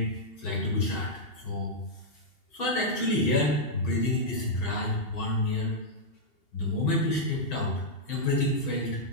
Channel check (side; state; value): right; late; 2.8 ms